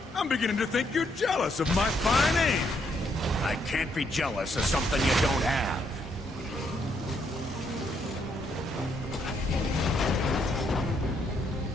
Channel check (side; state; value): both; normal; correlation 0.74